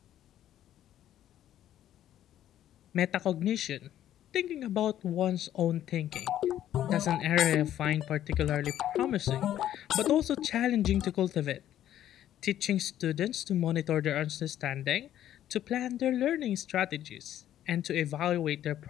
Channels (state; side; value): quieter; right; 11.7 dB